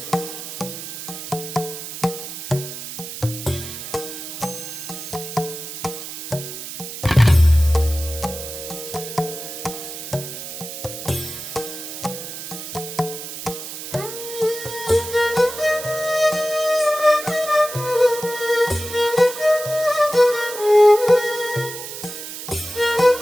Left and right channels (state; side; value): noise; right; hiss, 9 dB below the sound